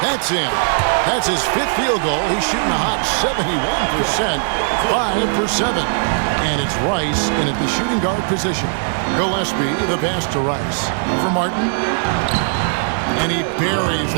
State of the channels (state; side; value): silent; left; digital silence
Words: That's in. That's his 5th field goal. He's shooting a hot 71%. 5 for 7. And it's Rice in at the shooting guard position. Gillespie, the pass to Rice. For Martin. And he buries